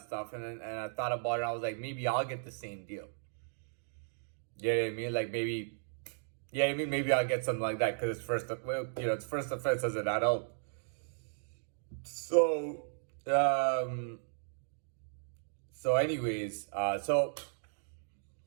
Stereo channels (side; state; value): left; silent; digital silence